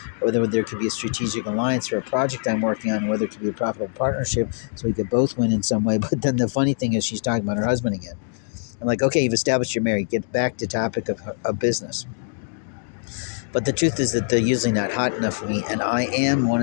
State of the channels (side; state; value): right; silent; digital silence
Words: or whether there could be a strategic alliance for a project I'm working on, whether it could be a profitable partnership so we could both win in some way. But then the funny thing is, she's talking about her husband again. I'm like, okay, you've established you're married. Get back to topic of business. But the truth is that they're usually not hot enough for me, and I am